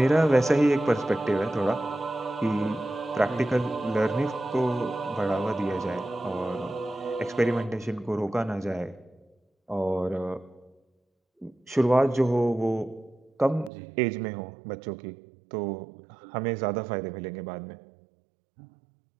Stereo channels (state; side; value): drops out; left; at 13.7 s